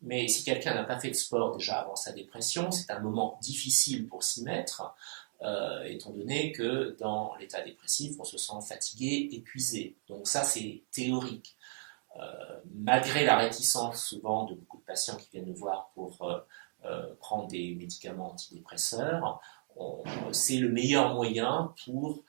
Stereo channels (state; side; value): silent; left; digital silence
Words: Mais si quelqu'un n'a pas fait de sport déjà avant sa dépression, c'est un moment difficile pour s'y mettre, étant donné que dans l'état dépressif, on se sent fatigué, épuisé. Donc ça, c'est théorique. Malgré la réticence souvent de beaucoup de patients qui viennent nous voir pour prendre des médicaments antidépresseurs, c'est le meilleur moyen pour,